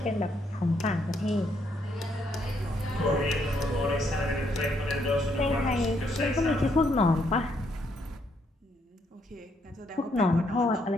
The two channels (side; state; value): both; normal; correlation 0.73